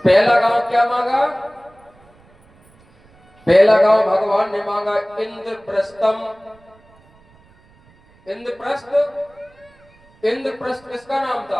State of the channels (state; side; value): noise; right; rumble, 30 dB below the sound